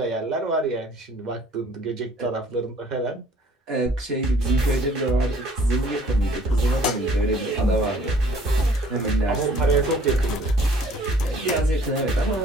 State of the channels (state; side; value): normal; both; correlation 0.56